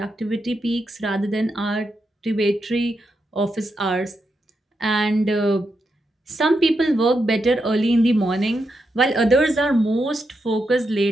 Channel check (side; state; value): both; normal; correlation 0.84